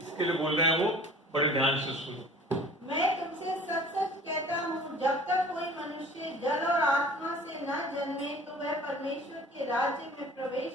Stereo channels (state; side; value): normal; both; correlation 0.46